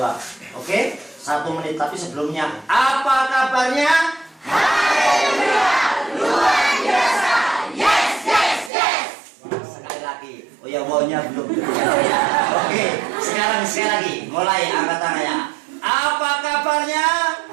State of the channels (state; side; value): drops out; left; at 8.7 s